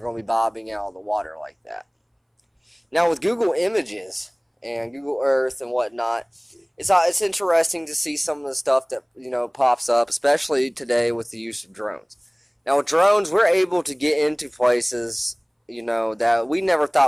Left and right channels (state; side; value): identical; both; correlation 1.00